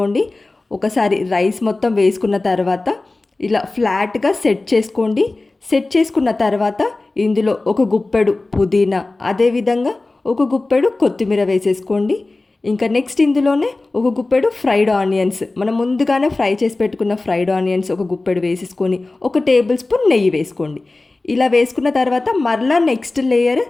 ఒకసారి రైస్ మొత్తం వేసుకున్న తర్వాత ఇలా ఫ్లాట్గా సెట్ చేసుకోండి. సెట్ చేసుకున్న తర్వాత ఇందులో 1 గుప్పెడు పుదీనా, అదేవిధంగా 1 గుప్పెడు కొత్తిమీర వేసేసుకోండి. ఇంకా నెక్స్ట్ ఇందులోనే 1 గుప్పెడు ఫ్రైడ్ ఆనియన్స్, మనం ముందుగానే ఫ్రై చేసి పెట్టుకున్న ఫ్రైడ్ ఆనియన్స్ 1 గుప్పెడు వేసేసుకొని 1 టేబుల్ స్పూన్ నెయ్యి వేసుకోండి. ఇలా వేసుకున్న తర్వాత మరలా నెక్స్ట్ లేయర్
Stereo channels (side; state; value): right; quieter; 3.2 dB